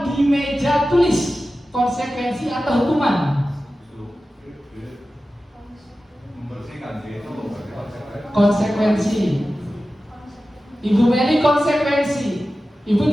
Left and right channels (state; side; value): normal; both; correlation 0.94